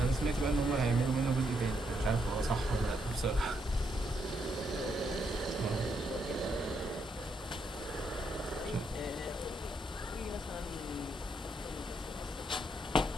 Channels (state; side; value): normal; both; correlation 0.77